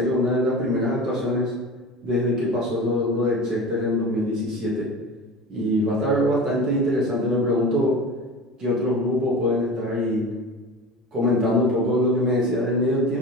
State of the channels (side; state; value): both; normal; correlation 0.33